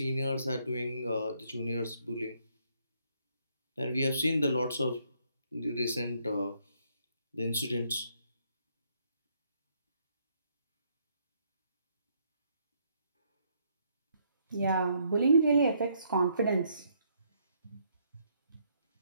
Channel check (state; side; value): inverted; both; correlation -0.71